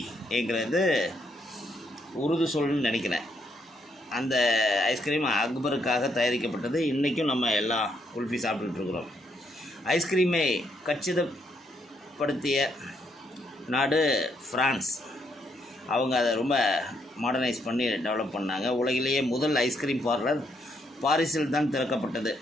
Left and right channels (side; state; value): both; normal; correlation 0.74